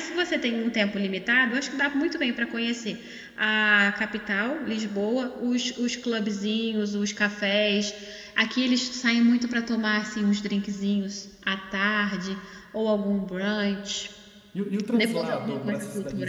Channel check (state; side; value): identical; both; correlation 1.00